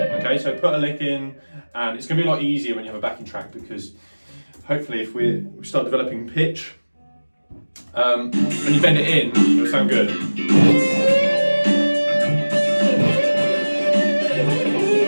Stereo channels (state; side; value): inverted; both; correlation -1.00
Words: Okay, so put a lick in, and it's going to be a lot easier when you have a backing track because hopefully, if we start developing pitch, when you bend it in, it'll sound good.